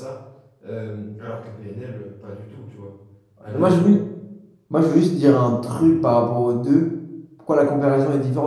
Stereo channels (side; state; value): both; identical; correlation 1.00